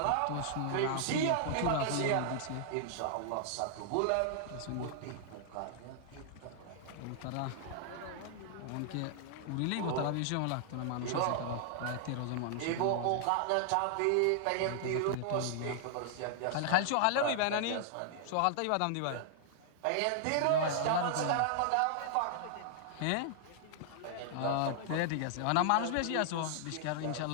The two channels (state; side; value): different; both; correlation -0.01